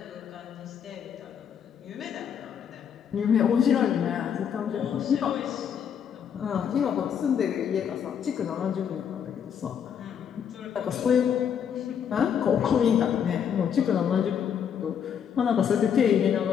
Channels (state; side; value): quieter; right; 8.1 dB